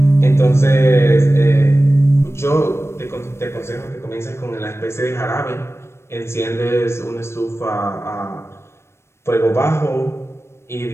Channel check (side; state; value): right; late; 0.13 ms